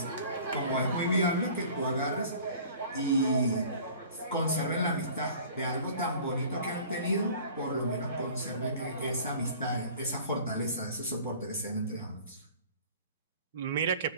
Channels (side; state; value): both; inverted; correlation -0.46